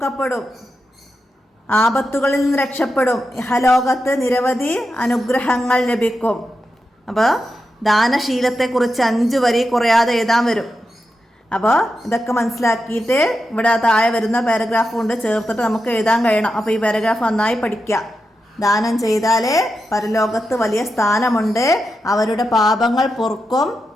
ആപത്തുകളിൽ നിന്ന് രക്ഷപ്പെടും. ഇഹലോകത്ത് നിരവധി അനുഗ്രഹങ്ങൾ ലഭിക്കും. അപ്പോൾ ദാനശീലത്തെക്കുറിച്ച് 5 വരി കുറയാതെ എഴുതാൻ വരും. അപ്പോൾ ഇതൊക്കെ മനസ്സിലാക്കിയിട്ട് ഇവിടെ താഴെ വരുന്ന പാരഗ്രാഫ് കൊണ്ട് ചേർത്തിട്ട് നമുക്ക് എഴുതാൻ കഴിയണം. അപ്പോൾ ഈ പാരഗ്രാഫ് നന്നായി പഠിക്കുക. ദാനം ചെയ്താൽ പരലോകത്ത് വലിയ സ്ഥാനമുണ്ട്. അവരുടെ പാപങ്ങൾ പൊറുക്കും.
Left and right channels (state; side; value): normal; both; correlation 0.88